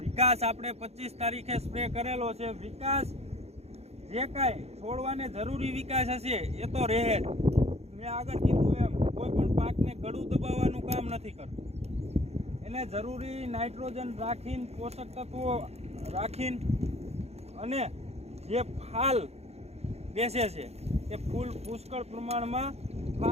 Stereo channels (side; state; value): left; late; 0.31 ms